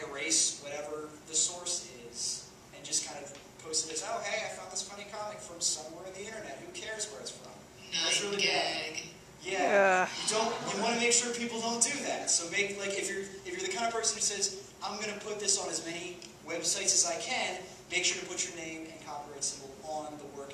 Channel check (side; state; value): both; identical; correlation 1.00